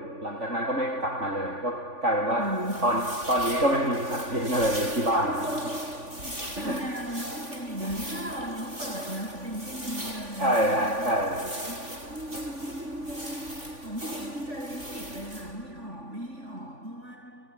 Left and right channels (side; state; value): left; late; 3.5 ms